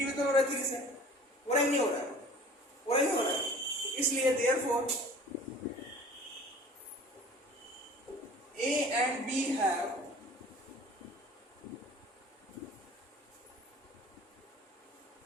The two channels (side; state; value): both; normal; correlation 0.45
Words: हो रहा है 3 से, हो रहा है नहीं हो रहा है, हो रहा है नहीं हो रहा है। इसलिए therefore a and b have